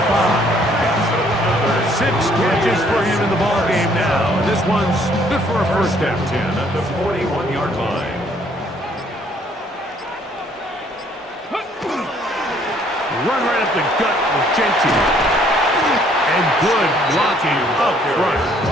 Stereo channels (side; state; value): both; normal; correlation 0.63